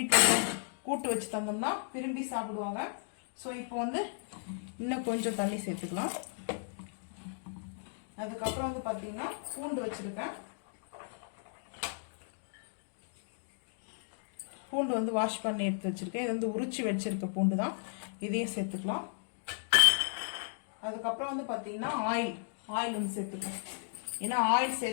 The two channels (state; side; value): silent; right; digital silence